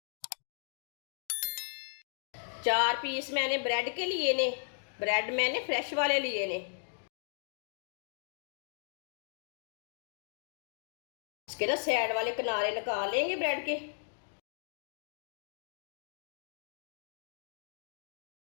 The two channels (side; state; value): right; silent; digital silence